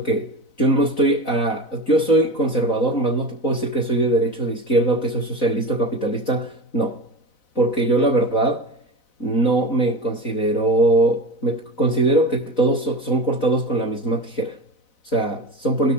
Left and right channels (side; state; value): right; late; 4.0 ms